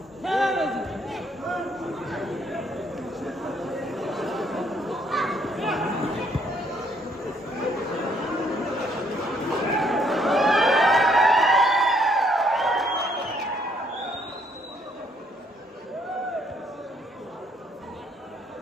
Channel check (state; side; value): normal; both; correlation 0.68